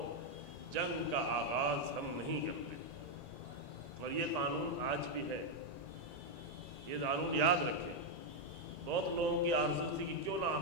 جنگ کا آغاز ہم نہیں کرتے، اور یہ قانون آج بھی ہے، یہ قانون یاد رکھیں۔ بہت لوگوں کی آرزو تھی کہ کیوں نہ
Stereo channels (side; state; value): left; late; 1.9 ms